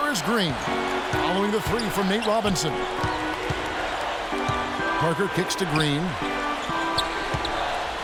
is Green, following the 3 from Nate Robinson. Parker kicks to Green.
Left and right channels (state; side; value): identical; both; correlation 1.00